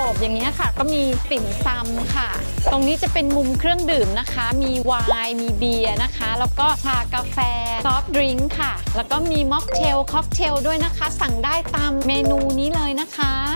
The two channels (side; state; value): both; inverted; correlation -1.00